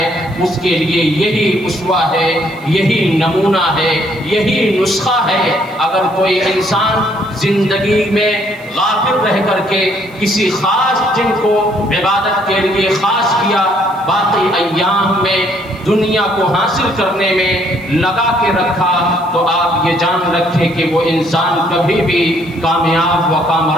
اس کے لیے یہی اسوہ ہے، یہی نمونہ ہے، یہی نسخہ ہے۔ اگر کوئی انسان زندگی میں غافل رہ کر کے کسی خاص دن کو عبادت کے لیے خاص کیا، باقی ایام میں دنیا کو حاصل کرنے میں لگا کے رکھا، تو آپ یہ جان رکھیں کہ وہ انسان کبھی بھی کامیاب و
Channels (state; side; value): noise; right; hiss, 29 dB below the sound